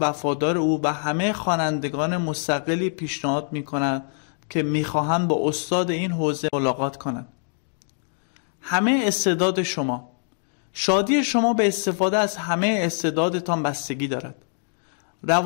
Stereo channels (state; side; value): silent; right; digital silence